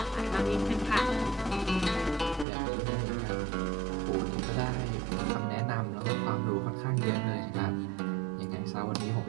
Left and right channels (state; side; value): drops out; left; at 2.5 s